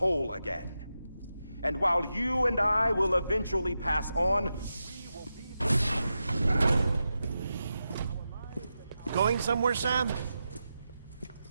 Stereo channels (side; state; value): both; inverted; correlation -0.89